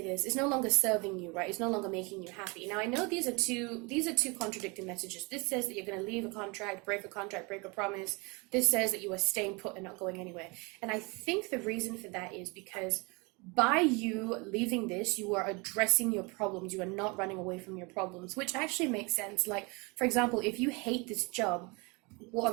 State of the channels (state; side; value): quieter; left; 28.4 dB